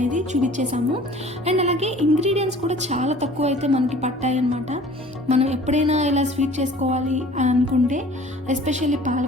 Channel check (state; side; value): normal; both; correlation 0.48